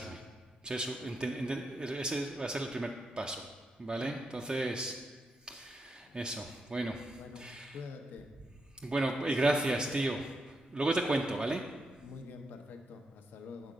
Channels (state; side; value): normal; both; correlation 0.83